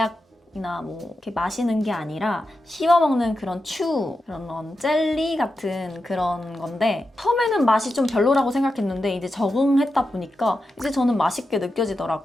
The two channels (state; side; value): normal; both; correlation 0.89